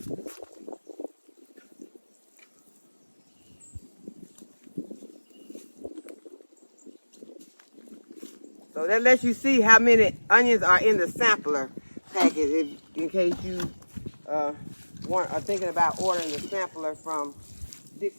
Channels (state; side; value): inverted; both; correlation -1.00